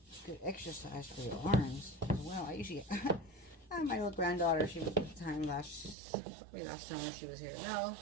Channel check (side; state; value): left; drops out; at 6.0 s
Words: Good exercise for your arms as well. I usually my little granddaughter, she was at the time probably last summer she was here. No,